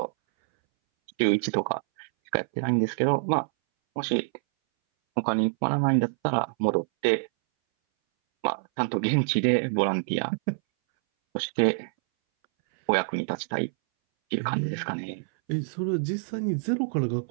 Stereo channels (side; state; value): left; silent; 61 dB below the other